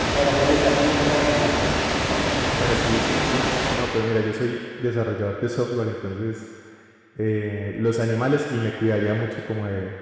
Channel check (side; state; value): both; identical; correlation 1.00